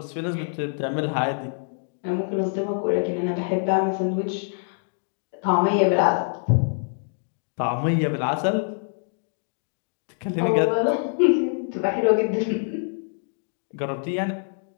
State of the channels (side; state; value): right; silent; digital silence